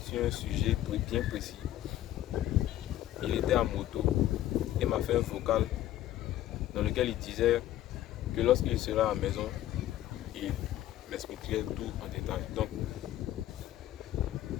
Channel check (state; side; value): quieter; right; 13.3 dB